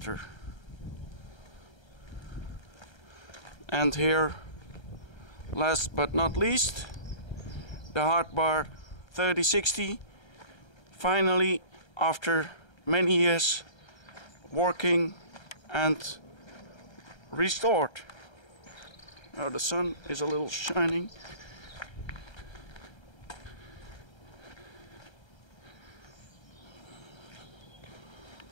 And here, last but not least, the hard bar 3060. Finally, after many years working and restored. Now the sun is a little shining.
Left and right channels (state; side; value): late; right; 1.3 ms